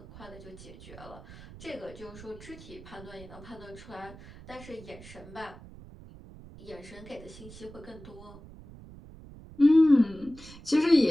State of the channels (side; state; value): right; noise; rumble, 17 dB below the sound